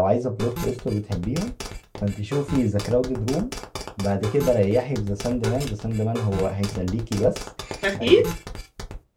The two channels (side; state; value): both; identical; correlation 1.00